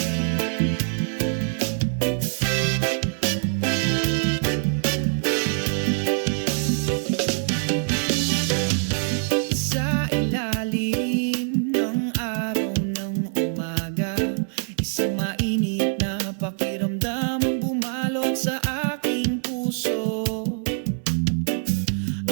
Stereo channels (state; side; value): silent; left; 62 dB below the other